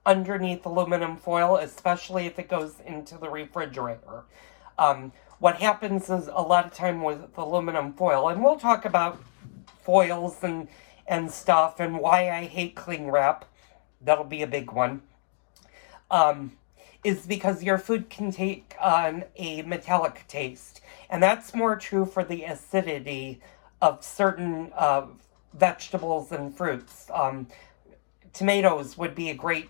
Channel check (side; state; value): right; silent; digital silence